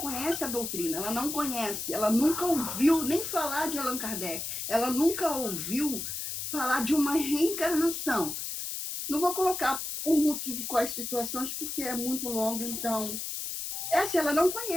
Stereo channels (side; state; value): left; noise; hiss, 5 dB below the sound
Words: a doutrina, ela não conhece, ela nunca ouviu nem falar de Allan Kardec, ela nunca ouviu falar de uma reencarnação. Não vou colocar por motivo quais situações, porque é muito longo, então... ela não